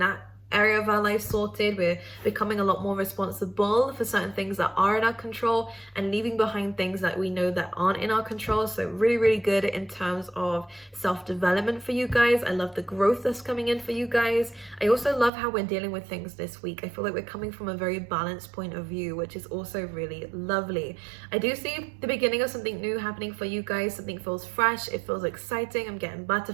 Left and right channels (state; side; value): drops out; left; at 15.3 s